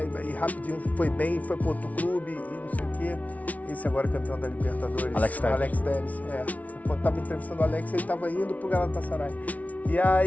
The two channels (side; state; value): right; late; 0.070 ms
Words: e rapidinho foi bem, foi para outro clube e não sei o quê. Esse agora campeão da Libertadores, Alex Telles. Quando estava entrevistando o Alex, ele estava indo para o Galatasaray. E